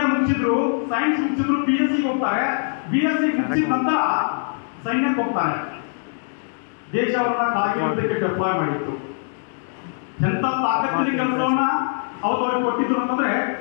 ಮುಗಿಸಿದ್ರು, ಸೈನ್ಸ್ ಮುಗಿಸಿದ್ರು, BSc ಹೋಗ್ತಾರೆ. BSc ಮುಗಿಸಿದ ನಂತರ ಸೈನ್ಯಕ್ಕೆ ಹೋಗ್ತಾರೆ. ದೇಶ ಅವರನ್ನ ಕಾರ್ಗಿಲ್ ಯುದ್ಧಕ್ಕೆ ಡೆಪ್ಲಾಯ್ ಮಾಡಿತ್ತು. ಎಂತ ತಾಕತ್ತಿನ ಕೆಲಸವನ್ನ ಅವ್ರಿಗೆ ಕೊಟ್ಟಿದ್ರು ಅಂತಂದ್ರೆ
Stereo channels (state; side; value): silent; right; digital silence